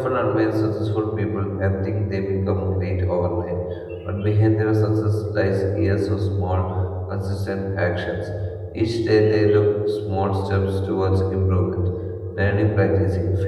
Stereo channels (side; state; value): both; identical; correlation 1.00